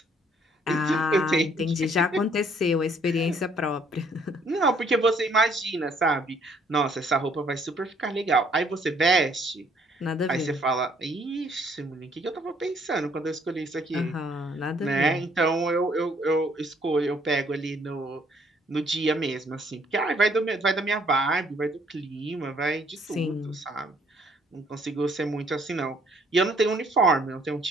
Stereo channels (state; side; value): normal; both; correlation 0.64